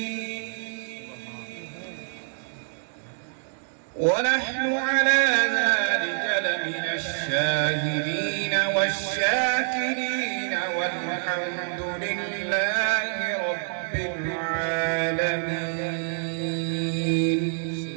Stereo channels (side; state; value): left; silent; digital silence